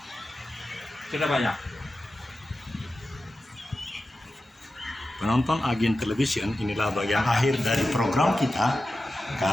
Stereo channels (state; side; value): normal; both; correlation 0.93